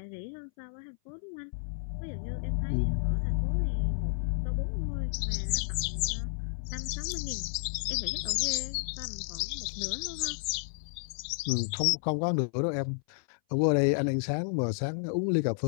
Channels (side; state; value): right; silent; 57 dB below the other